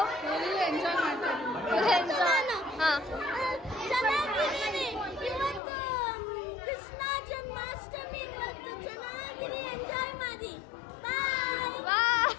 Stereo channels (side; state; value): right; drops out; at 5.6 s